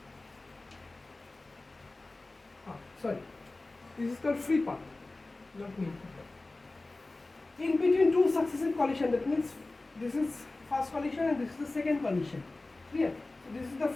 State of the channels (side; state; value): right; quieter; 3.1 dB